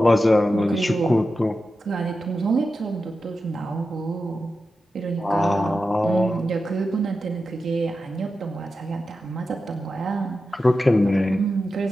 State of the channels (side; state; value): both; normal; correlation 0.91